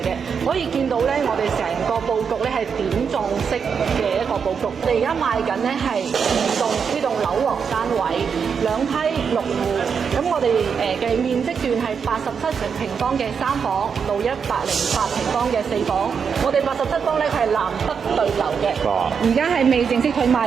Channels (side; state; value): left; quieter; 6.4 dB